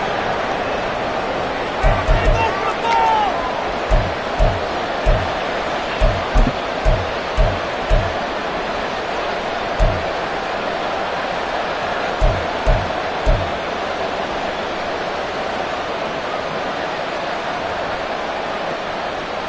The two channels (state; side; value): identical; both; correlation 1.00